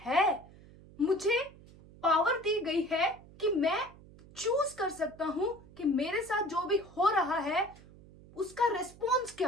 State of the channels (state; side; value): noise; right; hum, 22 dB below the sound